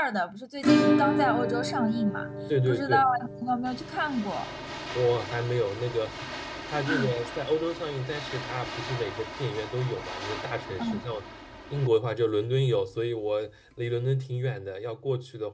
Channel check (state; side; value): identical; both; correlation 1.00